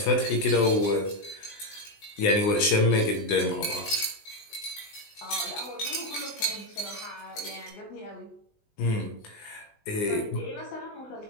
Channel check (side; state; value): right; late; 19 ms